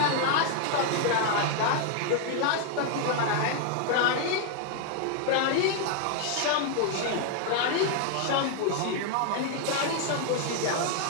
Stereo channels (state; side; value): different; both; correlation 0.00